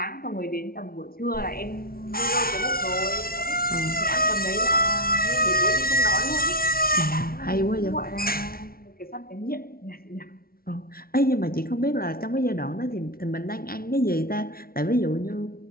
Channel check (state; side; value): late; right; 0.43 ms